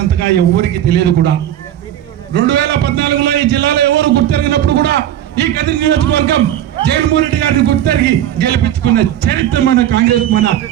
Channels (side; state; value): left; quieter; 11.6 dB